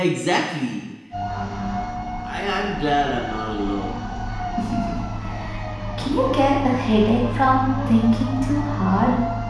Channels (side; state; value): both; identical; correlation 1.00